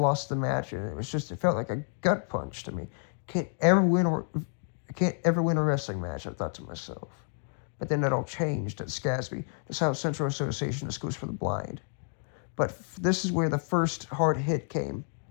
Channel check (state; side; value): silent; right; 58 dB below the other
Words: the match, and it felt like a gut punch to me. I can't ever win a wrestling match, I thought to myself. But then it all changed at SCASB, the South Central Association of Schools for the Blind. But this is where the first hard hit came.